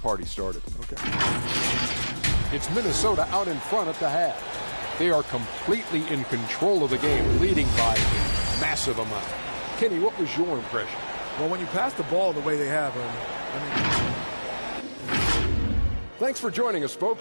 started. Okay. It's Minnesota out in front at the half. They are completely in control of the game, leading by a massive amount. Kenny, what was your impression? Well, when you pass the ball the way they have, Thanks for joining us,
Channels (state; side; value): inverted; both; correlation -1.00